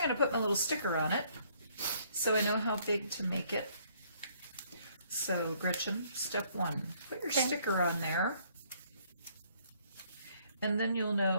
going to put my little sticker on it. So I know how big to make it. So Gretchen, step one, put your sticker on there. And then you'll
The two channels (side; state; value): both; inverted; correlation -0.65